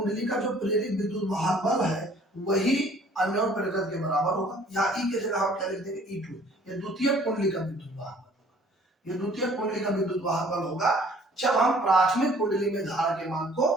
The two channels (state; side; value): normal; both; correlation 0.55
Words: का जो प्रेरित विद्युत वाहक बल है वही अन्योन प्रेरकत्व के बराबर होगा। यहाँ ई की जगह हम क्या लिख देंगे E2, ये द्वितीय कुंडली का विद्युत वाहक बल होगा, ये द्वितीय कुंडली का विद्युत वाहक बल होगा जब हम प्राथमिक कुंडली में धारा के मान को